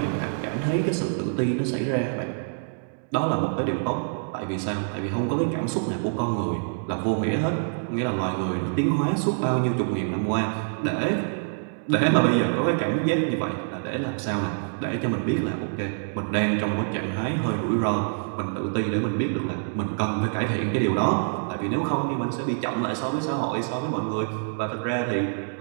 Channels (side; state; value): left; silent; digital silence